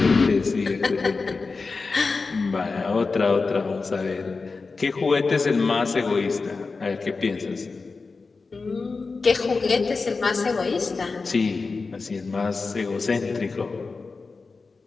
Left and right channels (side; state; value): right; quieter; 4.2 dB